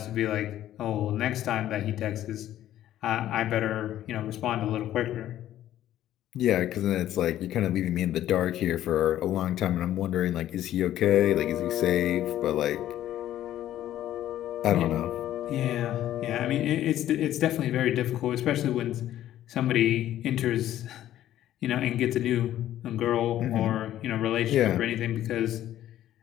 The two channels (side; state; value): right; quieter; 12.6 dB